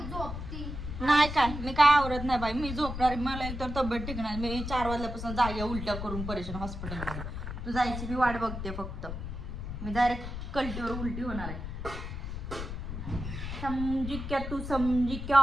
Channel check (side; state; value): left; noise; rumble, 6 dB below the sound